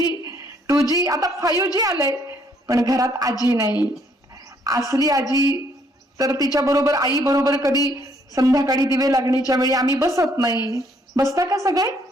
2G आता 5G आलंय. पण घरात आजी नाही. असली आजी तर तिच्या बरोबर, आई बरोबर कधी संध्याकाळी दिवे लागणीच्या वेळी आम्ही बसत नाही. बसता का सगळे?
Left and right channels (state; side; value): normal; both; correlation 0.68